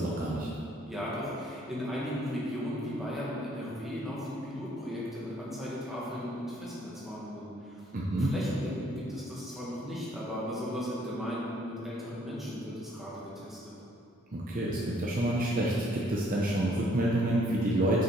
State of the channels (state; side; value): normal; both; correlation 0.64